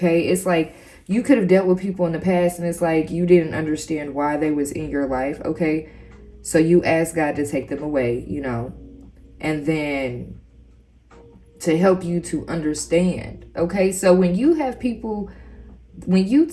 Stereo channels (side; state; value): both; identical; correlation 1.00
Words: It's like you could have dealt with people in the past, and it's like you didn't understand why they was in your life, okay? So you asked God to take them away, and then to help you to understand, Okay, so when you have people,